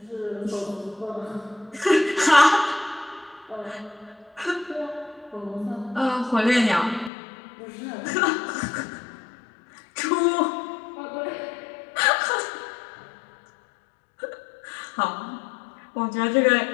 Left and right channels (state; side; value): drops out; right; at 7.1 s